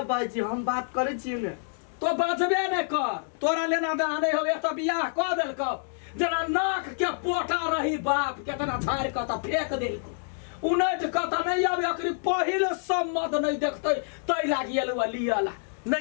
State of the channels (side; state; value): right; silent; digital silence